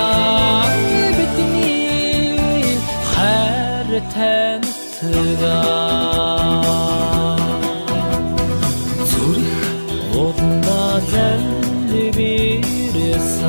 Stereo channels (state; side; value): inverted; both; correlation -1.00